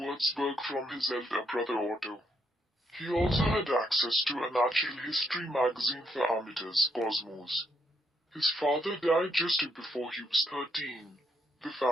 from his elder brother Otto. He also had access to a natural history magazine for amateurs, Cosmos. His father died just before he was 13. The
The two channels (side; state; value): both; normal; correlation 0.76